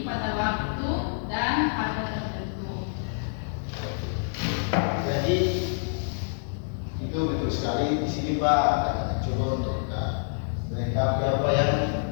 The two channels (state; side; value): silent; right; digital silence